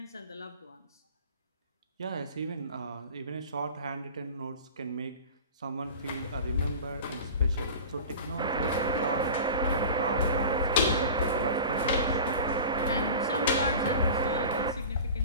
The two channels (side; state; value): both; inverted; correlation -0.36